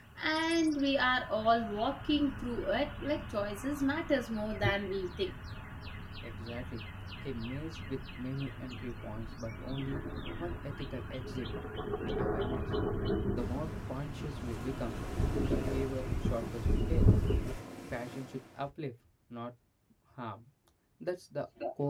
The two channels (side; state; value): both; identical; correlation 1.00